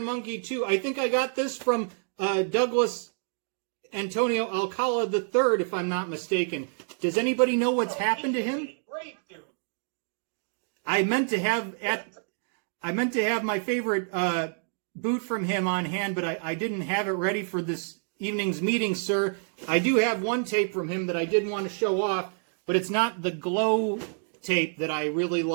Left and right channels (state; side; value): silent; left; 59 dB below the other